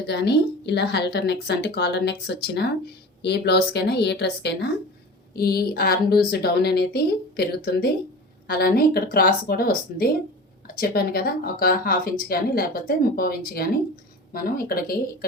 కానీ ఇలా హెల్టర్ నెక్స్ అంటే కాలర్ నెక్స్ వచ్చిన ఏ బ్లౌజ్కైనా ఏ డ్రెస్కైనా ఈ ఆర్మ్ లూజ్ డౌన్ అనేది పెరుగుతుంది. అలానే ఇక్కడ క్రాస్ కూడా వస్తుంది. చెప్పాను కదా, ఒక హాఫ్ ఇంచ్ కానీ లేకపోతే 30 ఇంచ్ కానీ మనం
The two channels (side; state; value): both; normal; correlation 0.35